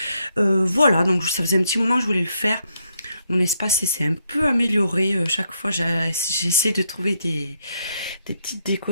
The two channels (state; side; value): inverted; both; correlation -0.77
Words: Voilà, donc ça faisait un petit moment que je voulais le faire. Mon espace s'est un peu amélioré, chaque fois j'essaie de trouver des petites